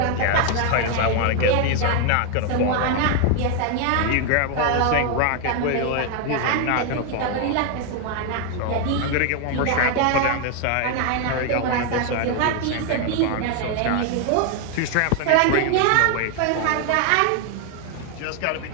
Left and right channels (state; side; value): different; both; correlation 0.01